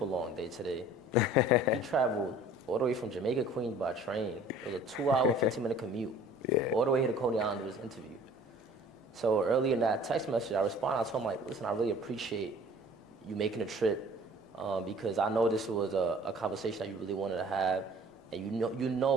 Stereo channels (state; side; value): normal; both; correlation 0.50